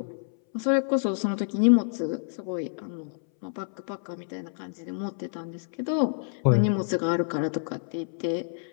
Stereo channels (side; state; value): right; silent; 59 dB below the other